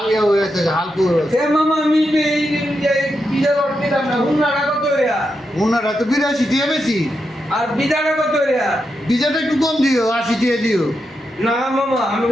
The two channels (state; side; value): normal; both; correlation 0.85